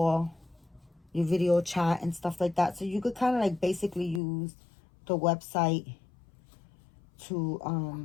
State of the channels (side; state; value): right; drops out; at 4.2 s